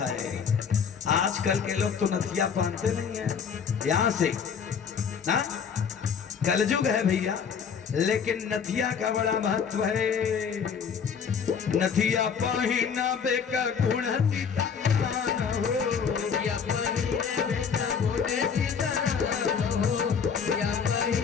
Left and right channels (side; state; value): right; quieter; 6.7 dB